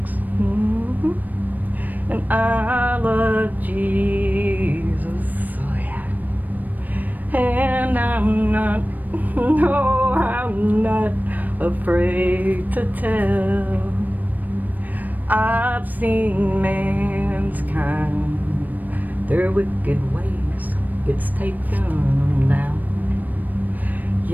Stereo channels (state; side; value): late; left; 0.084 ms